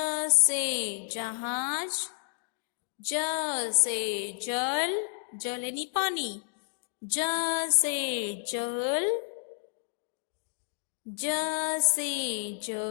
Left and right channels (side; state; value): right; silent; digital silence